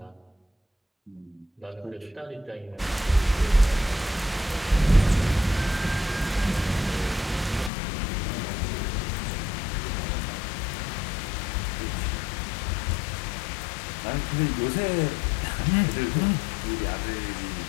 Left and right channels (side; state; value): right; drops out; at 7.7 s